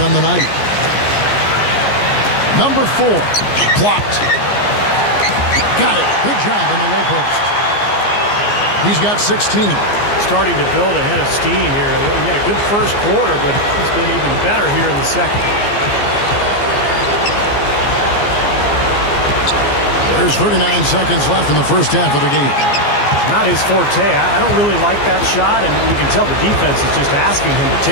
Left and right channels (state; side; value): late; right; 14 ms